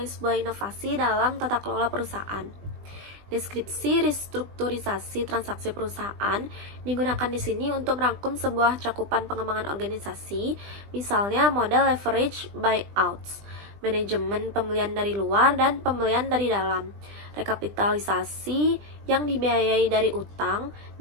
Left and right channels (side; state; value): left; late; 20 ms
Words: sebuah inovasi dalam tata kelola perusahaan. Deskripsi restrukturisasi transaksi perusahaan digunakan di sini untuk merangkum sebuah cakupan pengembangan organisasi, misalnya model leverage buyouts, manajemen pembelian dari luar dan pembelian dari dalam, rekapitalisasi yang dibiayai dari utang